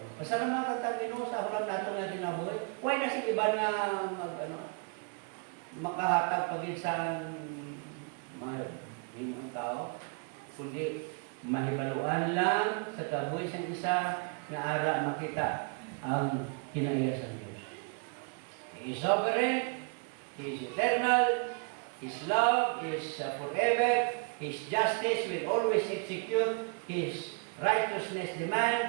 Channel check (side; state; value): left; quieter; 37.7 dB